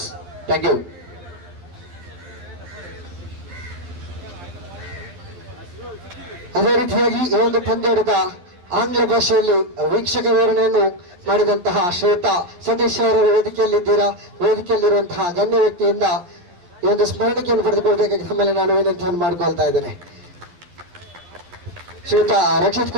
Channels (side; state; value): left; late; 11 ms